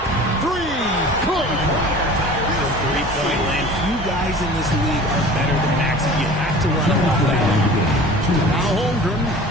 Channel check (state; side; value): normal; both; correlation 0.42